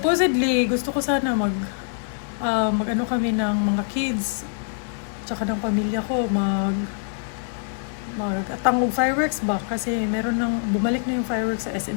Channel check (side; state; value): right; silent; digital silence